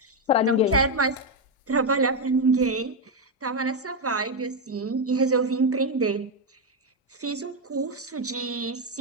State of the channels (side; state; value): both; normal; correlation 0.05